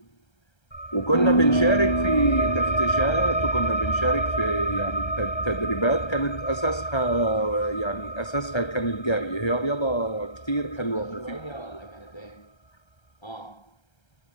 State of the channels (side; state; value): right; late; 1.3 ms